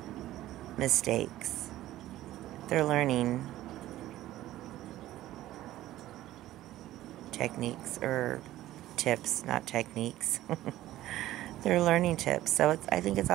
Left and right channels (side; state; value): left; quieter; 14.7 dB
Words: mistakes. They're learning techniques, or tips, not techniques. They're learning tips. So I think it's